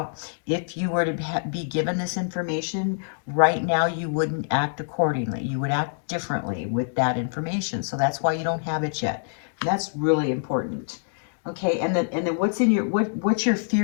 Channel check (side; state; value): right; silent; digital silence